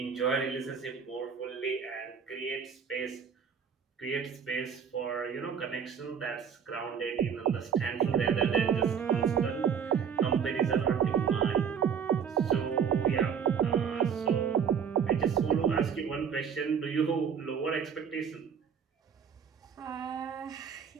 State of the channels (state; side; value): quieter; left; 7.2 dB